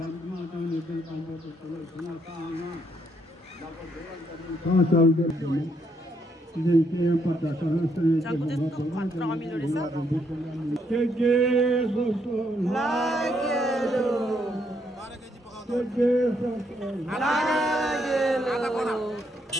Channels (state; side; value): normal; both; correlation 0.74